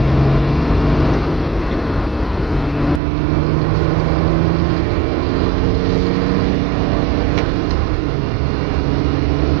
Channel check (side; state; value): left; drops out; at 3.0 s